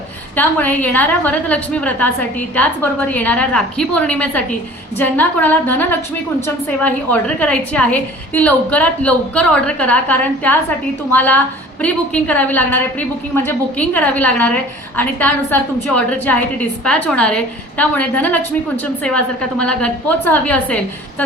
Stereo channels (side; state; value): both; normal; correlation 0.46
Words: त्यामुळे येणाऱ्या वरदलक्ष्मी व्रतासाठी त्याचबरोबर येणाऱ्या राखी पौर्णिमेसाठी ज्यांना कोणाला धनलक्ष्मी कुंचम सेवा ही ऑर्डर करायची आहे ती लवकरात लवकर ऑर्डर करा, कारण त्यासाठी तुम्हाला प्री बुकिंग करावी लागणार आहे. प्री बुकिंग म्हणजे बुकिंग करावी लागणार आहे आणि त्यानुसार तुमची ऑर्डर जी आहे ती डिस्पॅच होणार आहे. त्यामुळे धनलक्ष्मी कुंचम सेवा जर का तुम्हाला घरपोच हवी असेल